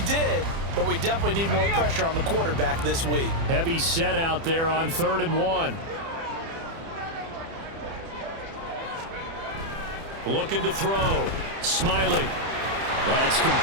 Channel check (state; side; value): late; left; 30 ms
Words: but we definitely need more pressure on the quarterback this week. Heavy set out there on 3rd and 1. Looking to throw. Smiley. That's